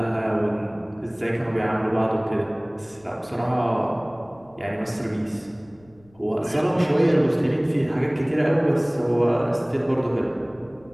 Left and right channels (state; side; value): noise; left; rumble, 29 dB below the sound